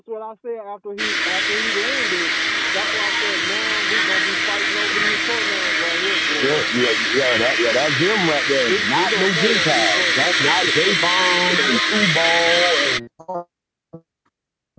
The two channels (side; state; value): both; identical; correlation 1.00